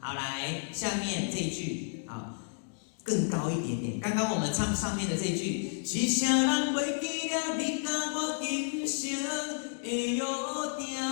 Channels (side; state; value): right; silent; digital silence